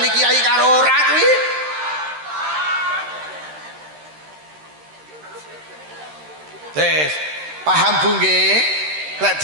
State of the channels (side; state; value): left; late; 13 ms